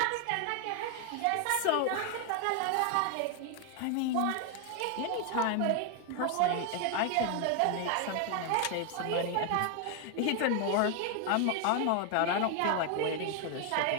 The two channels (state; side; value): different; both; correlation 0.00